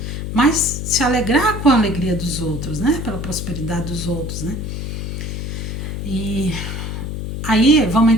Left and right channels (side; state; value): left; noise; hum, 5 dB below the sound